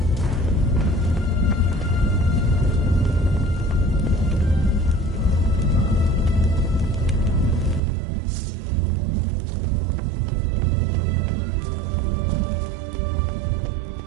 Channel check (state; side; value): drops out; left; at 7.8 s